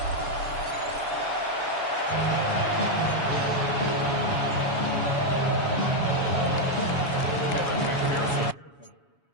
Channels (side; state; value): right; late; 7.1 ms